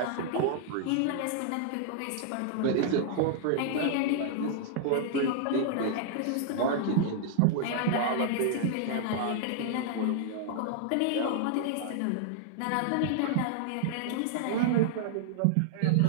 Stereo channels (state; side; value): different; both; correlation -0.01